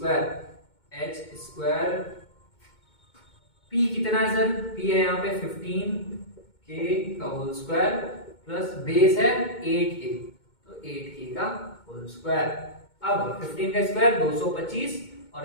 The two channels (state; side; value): late; right; 2.2 ms